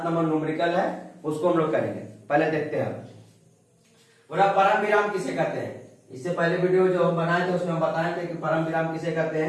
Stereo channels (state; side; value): identical; both; correlation 1.00